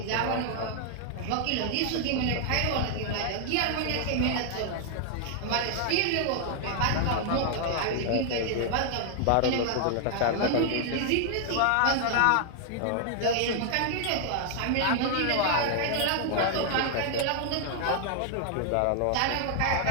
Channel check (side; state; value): both; different; correlation 0.00